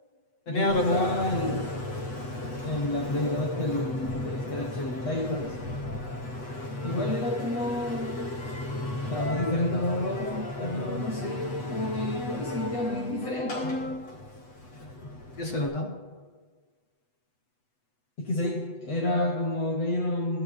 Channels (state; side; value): late; right; 8.1 ms